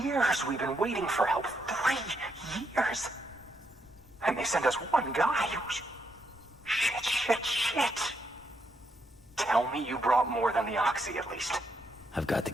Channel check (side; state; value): both; normal; correlation 0.78